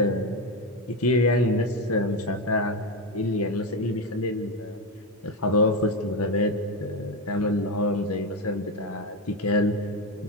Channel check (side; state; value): both; normal; correlation 0.11